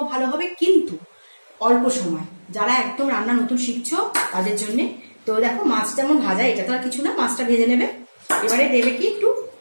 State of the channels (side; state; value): both; inverted; correlation -1.00